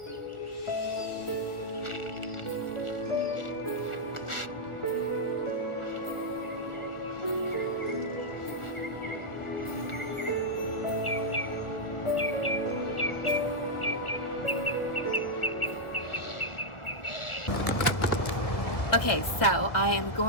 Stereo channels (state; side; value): late; right; 1.4 ms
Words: Okay, so I am